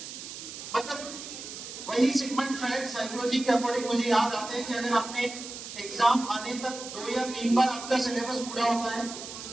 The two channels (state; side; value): noise; right; hiss, 10 dB below the sound